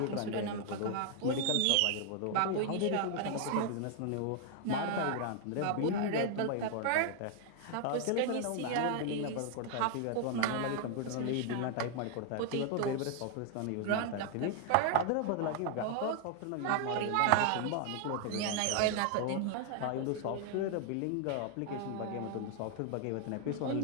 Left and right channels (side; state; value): both; different; correlation 0.00